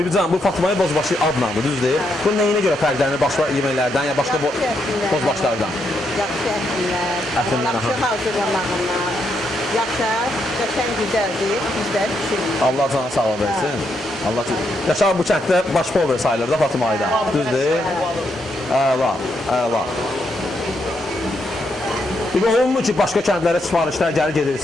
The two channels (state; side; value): normal; both; correlation 0.79